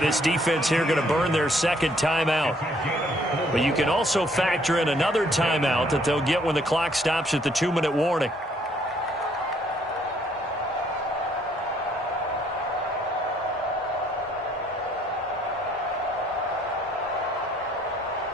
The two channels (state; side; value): normal; both; correlation 0.65